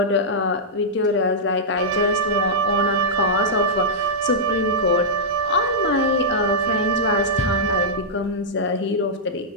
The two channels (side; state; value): both; normal; correlation -0.10